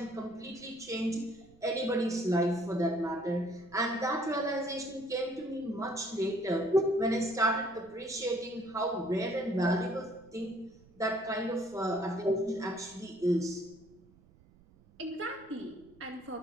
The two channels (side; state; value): right; noise; rumble, 27 dB below the sound